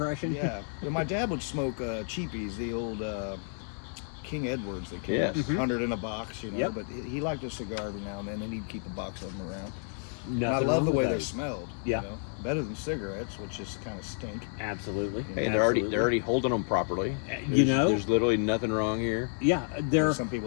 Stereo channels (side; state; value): right; silent; 57 dB below the other